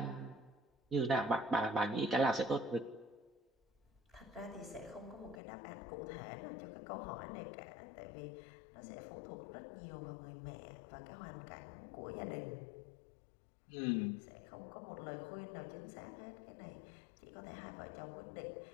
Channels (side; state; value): right; drops out; at 5.4 s